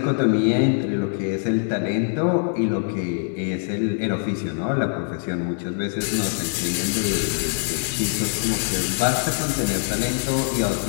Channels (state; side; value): silent; right; 57 dB below the other